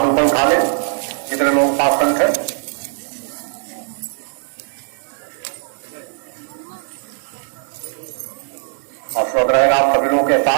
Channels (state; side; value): silent; left; digital silence